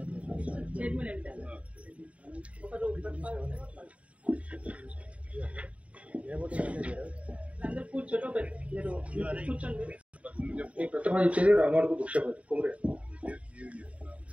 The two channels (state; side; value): late; left; 0.065 ms